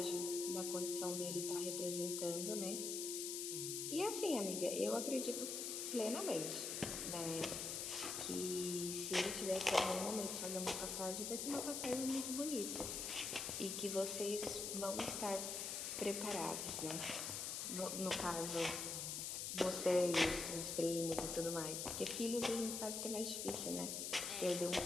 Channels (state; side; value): noise; left; hiss, 3 dB below the sound